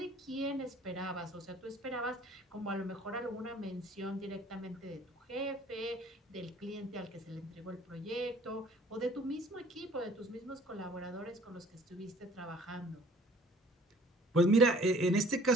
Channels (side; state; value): both; normal; correlation 0.54